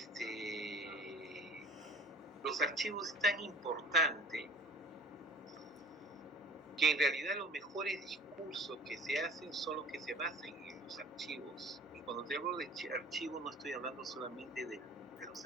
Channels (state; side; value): normal; both; correlation 0.46